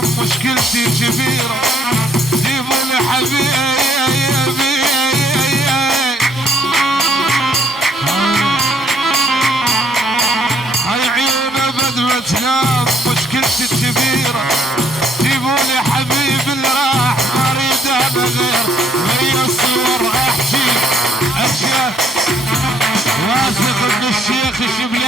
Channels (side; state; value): both; normal; correlation 0.67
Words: مشكلتي كبيره جيبوا لي حبيبي هاي عيونه بدمة تنام مشكلتي الكبيرة جيبوا لي حبيب اللي راح ما اريد انا غير ويا الصور احكي اشياء واثق ان الشيخ